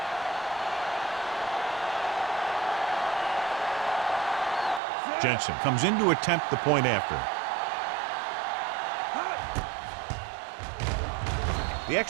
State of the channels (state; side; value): drops out; left; at 4.8 s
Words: Jensen comes in to attempt the point after. The